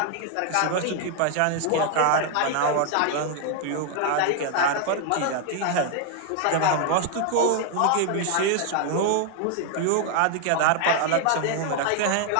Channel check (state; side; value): different; both; correlation 0.00